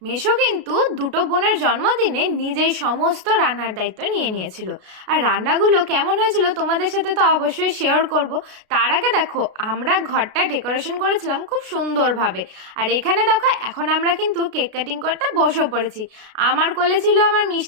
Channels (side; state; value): left; late; 33 ms